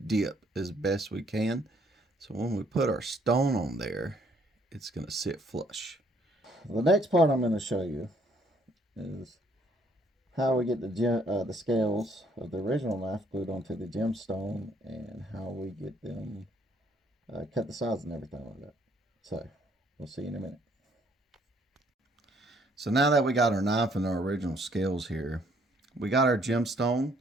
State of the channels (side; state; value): both; normal; correlation 0.66